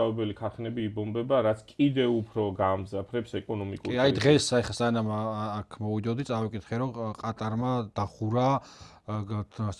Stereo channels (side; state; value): both; identical; correlation 1.00